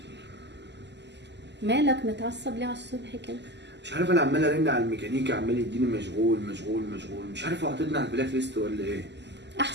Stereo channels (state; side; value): late; left; 0.50 ms